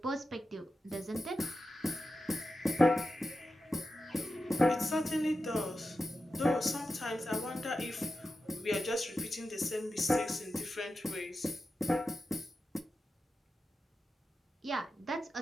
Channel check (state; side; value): normal; both; correlation 0.91